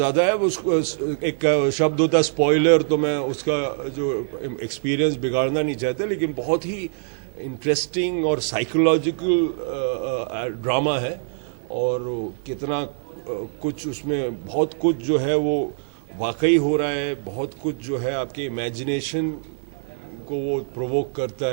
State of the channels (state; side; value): silent; left; digital silence